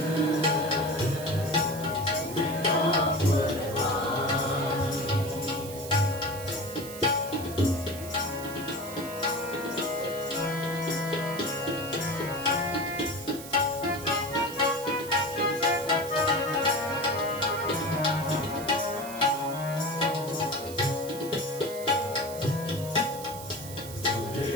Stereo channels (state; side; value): noise; right; hiss, 13 dB below the sound